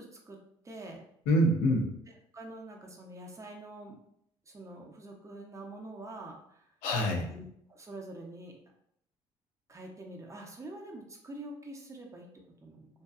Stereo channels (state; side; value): normal; both; correlation 0.54